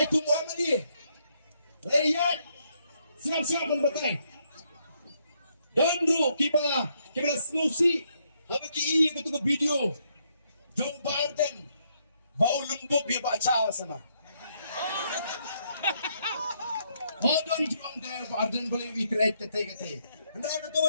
tungguan mali. Rakyat siap-siap membatai. Dan bro kita solusi. Habis ki betul video. Jom Barden. Bau lembut dia baca sana. Hodon juang dia Barden boleh ikret kete. Anda betul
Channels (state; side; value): inverted; both; correlation -0.74